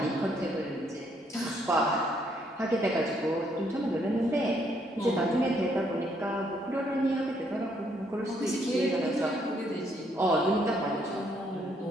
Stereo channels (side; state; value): both; normal; correlation 0.70